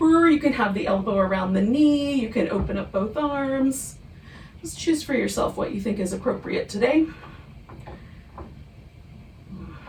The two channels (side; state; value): both; identical; correlation 1.00